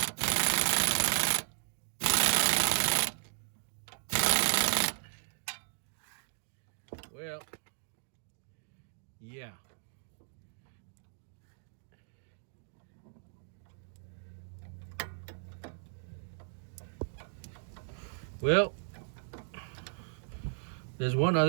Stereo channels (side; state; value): left; silent; digital silence